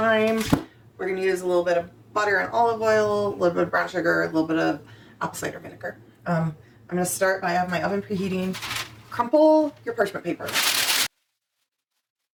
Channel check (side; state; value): both; identical; correlation 1.00